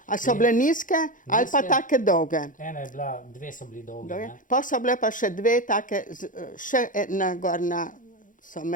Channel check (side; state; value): right; late; 0.38 ms